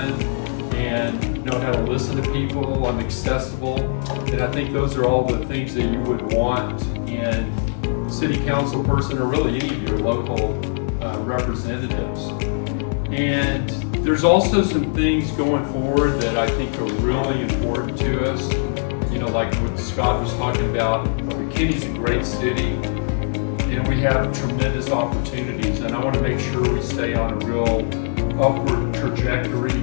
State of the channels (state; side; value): silent; right; digital silence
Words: and know how to listen to people. I'm accessible, and I think those are all the things that you would want in a city council person or really any of your local representatives. And there's also some things going forward that I think are really important to us. Like what Scott was talking about, McKinney's a great city, and we have tremendous opportunities, and I want to make sure we stay on a real upward trajectory